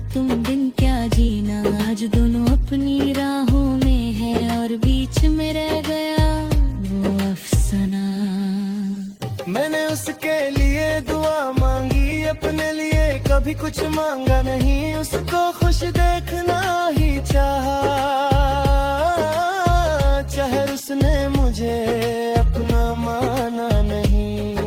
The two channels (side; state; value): both; identical; correlation 1.00